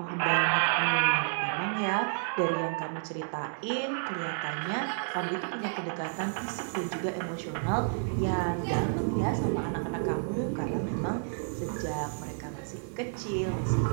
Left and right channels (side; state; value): left; silent; digital silence